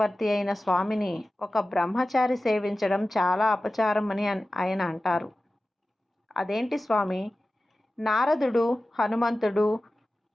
అయిన స్వామిని ఒక బ్రహ్మచారి సేవించడం చాలా అపచారం అని ఆయన అంటారు. అదేంటి స్వామి, నారదుడు, హనుమంతుడు,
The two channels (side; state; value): both; normal; correlation 0.95